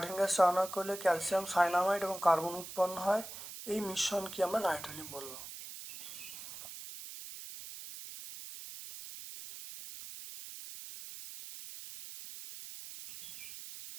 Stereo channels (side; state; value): right; noise; hiss, 11 dB below the sound